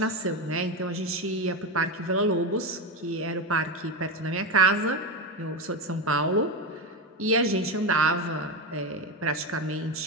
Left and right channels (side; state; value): both; normal; correlation 0.15